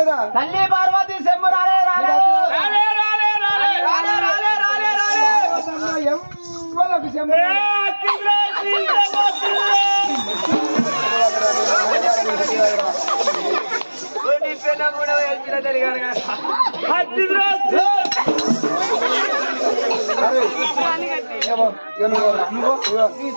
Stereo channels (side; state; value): both; inverted; correlation -1.00